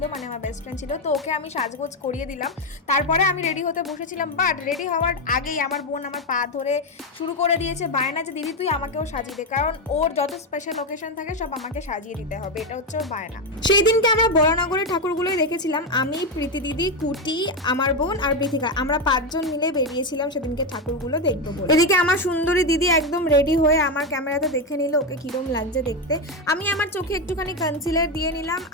মানে আমার বেস্ট ফ্রেন্ড ছিল, তো ওকে আমি সাজগোজ করিয়ে দিলাম। তারপরে আমি রেডি হতে বসেছিলাম, বাট রেডি হওয়ার আগেই আমার বোন আমার পা ধরে শুরু করে দিয়েছে বায়না যে দিদি তুই আমাকেও সাজিয়ে দে, কারণ ওর যত স্পেশাল লোকেশন থাকে সব আমাকে সাজিয়ে দিতে হবে, এটা হচ্ছে ওর বায়না। সেই দিনকে আমরা বরানগরের ঠাকুরগুলোই দেখেছিলাম, আমি, প্রীতি দিদি, কুটি, আমার বোন আর বৃথিকা, আমরা 5 জন মিলে বেরিয়েছিলাম সেদিনকে ঠাকুরগুলো দেখবো বলে। এদিকে আমার সুন্দরী দিদি একদম রেডি হয়ে আমার ক্যামেরাতে দেখে নিল ওকে কিরম লাগছে দেখতে। আমি আমার চোখে একটুখানি কনসিলার দিয়ে নিলাম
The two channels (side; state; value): both; normal; correlation 0.09